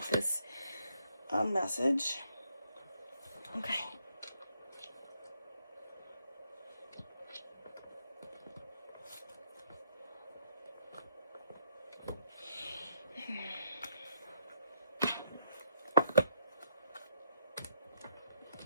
this message. Okay.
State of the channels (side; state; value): both; inverted; correlation -0.72